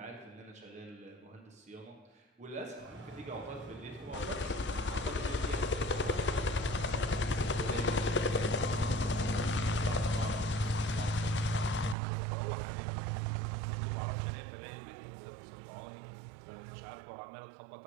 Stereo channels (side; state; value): left; drops out; at 12.0 s